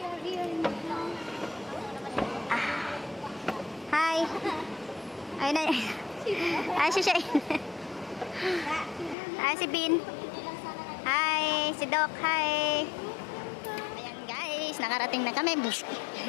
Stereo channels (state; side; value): drops out; right; at 9.2 s